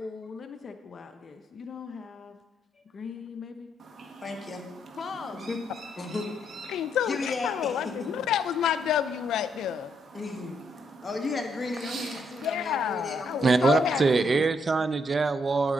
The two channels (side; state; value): both; normal; correlation 0.75